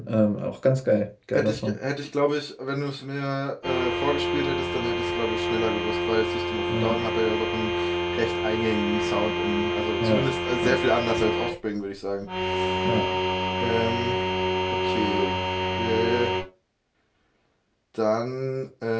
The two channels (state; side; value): identical; both; correlation 1.00